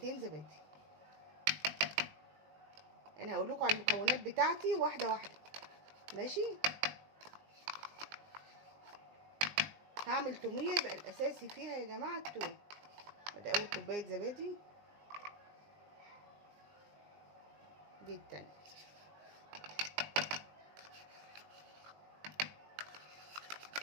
زبادي. انا هقول لكم على المكونات بتاعتي واحده واحده، ماشي؟ هعمل توميه يبقى الاساسي فيها يا جماعه التوم. ادي اول كوبايه زبادي، دي التانية.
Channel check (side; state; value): left; late; 20 ms